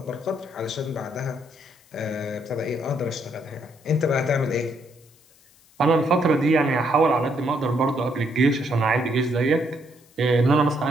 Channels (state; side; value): noise; left; hiss, 30 dB below the sound